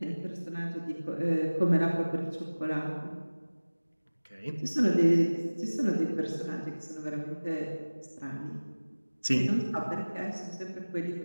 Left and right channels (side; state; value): both; inverted; correlation -1.00